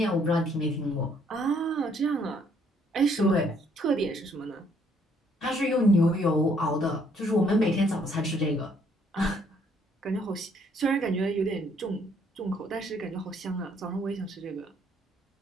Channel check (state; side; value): normal; both; correlation 0.66